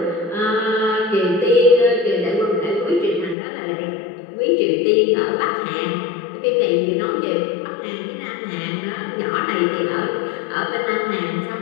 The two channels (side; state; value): right; drops out; at 3.4 s